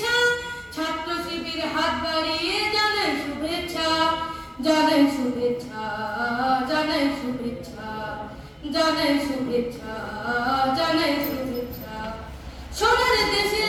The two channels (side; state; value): both; identical; correlation 1.00